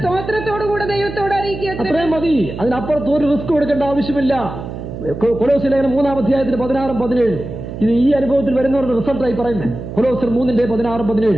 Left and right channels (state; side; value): noise; right; hum, 9 dB below the sound